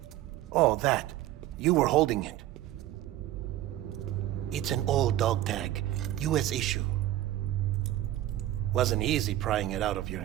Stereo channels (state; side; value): quieter; left; 14.0 dB